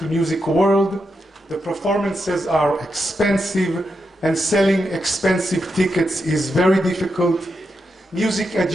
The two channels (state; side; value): normal; both; correlation 0.85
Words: music world. The performances are expensive, and selling expensive tickets is very difficult. Music